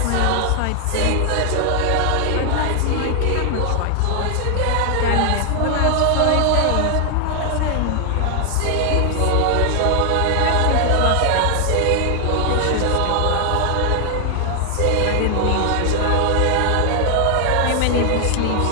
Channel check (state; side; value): different; both; correlation 0.00